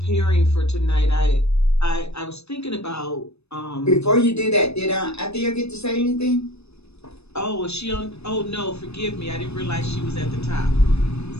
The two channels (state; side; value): late; right; 0.79 ms